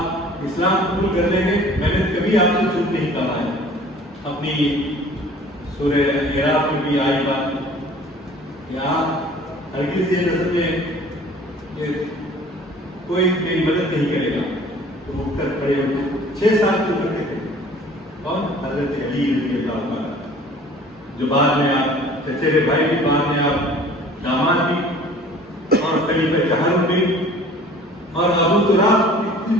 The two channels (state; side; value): normal; both; correlation 0.49